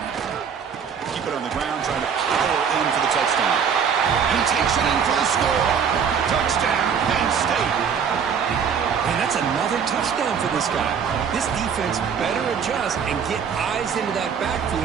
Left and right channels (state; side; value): quieter; left; 7.0 dB